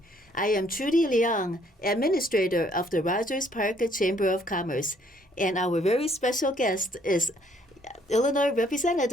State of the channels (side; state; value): both; normal; correlation 0.65